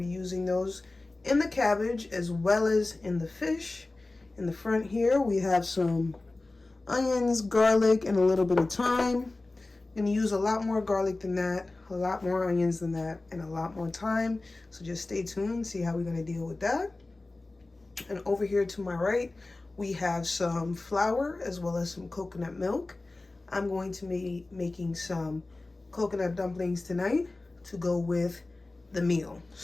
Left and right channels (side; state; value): right; quieter; 3.1 dB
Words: using those in the cabbage as well as in the fish. In the front here, we have some onions, garlic, and a little bit of thyme. I'm going to use a lot more garlic than that, a lot more onions than that, and a lot more thyme. So just stay tuned, see how we're going to deal with that. And over here to my right, we have some flour as well as some coconut milk. I'm going to be making some coconut dumplings tonight to go with the meal.